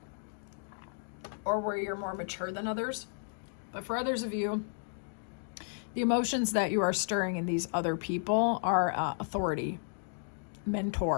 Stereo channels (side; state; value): right; silent; digital silence